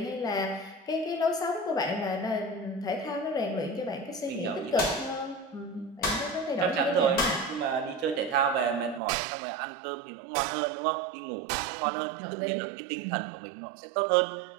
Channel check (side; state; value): left; drops out; at 9.0 s